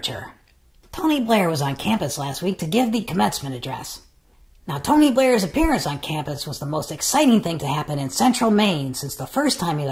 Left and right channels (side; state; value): both; identical; correlation 1.00